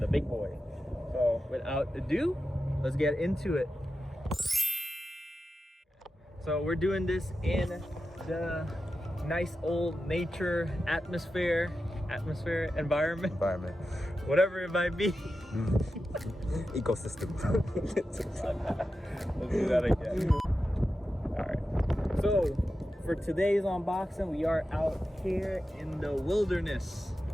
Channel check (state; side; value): normal; both; correlation 0.91